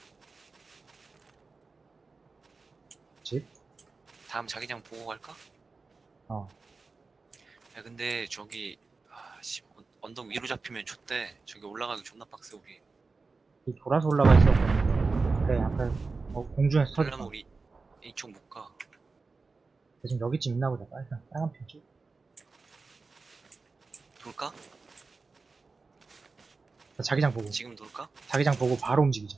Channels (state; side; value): quieter; left; 4.1 dB